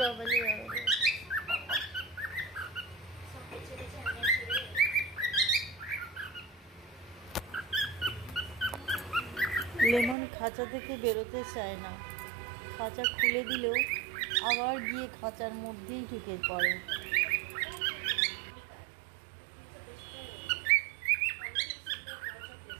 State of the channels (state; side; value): drops out; left; at 10.2 s